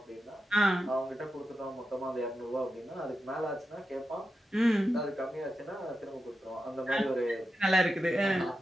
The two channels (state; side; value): normal; both; correlation 0.90